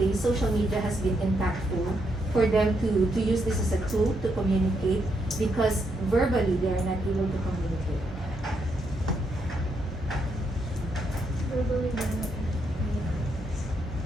social media has been impactful for them to use this as a tool to communicate, because verbally they are not able to communicate. Verbally,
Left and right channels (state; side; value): normal; both; correlation 0.78